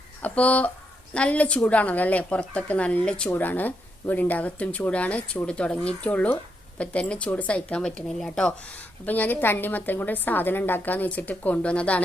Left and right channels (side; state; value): both; normal; correlation 0.80